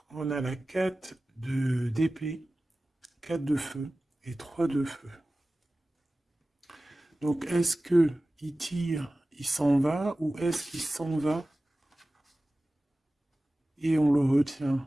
on a la 4 d'épée, 4 de feu et 3 de feu. Donc, est-ce que il tire, il s'en va, ou est-ce qu'il s'en va et on le retient?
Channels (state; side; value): normal; both; correlation 0.96